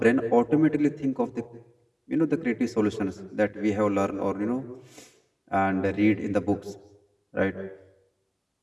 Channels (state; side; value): identical; both; correlation 1.00